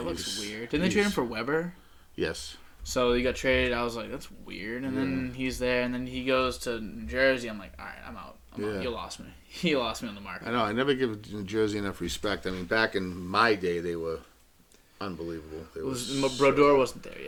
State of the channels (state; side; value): identical; both; correlation 1.00